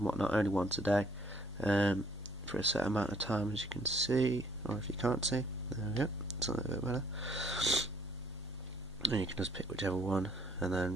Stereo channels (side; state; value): both; normal; correlation 0.63